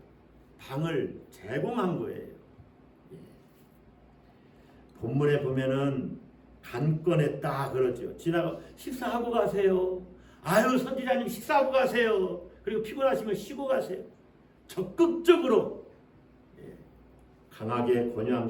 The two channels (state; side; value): identical; both; correlation 1.00